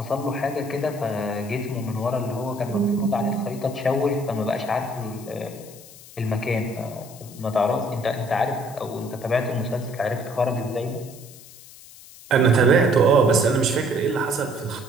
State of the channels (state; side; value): noise; left; hiss, 19 dB below the sound